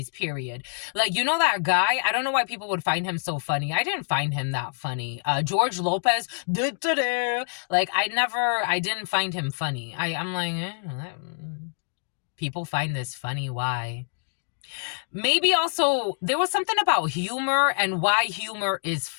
period. Like, you know, that guy, I don't know why people would find him so funny. I didn't find him that funny. George Lopez, like I didn't find him funny. I'm like, people find this funny. Why? Maybe also there was something about humor and why humor is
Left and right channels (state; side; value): silent; right; digital silence